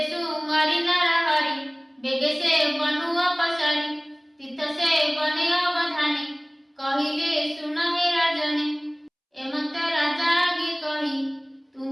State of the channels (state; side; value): identical; both; correlation 1.00